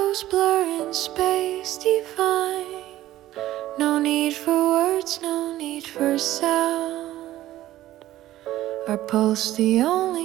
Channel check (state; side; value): quieter; left; 14.6 dB